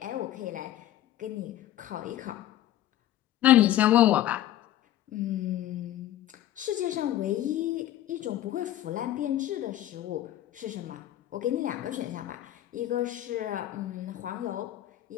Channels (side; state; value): right; quieter; 13.0 dB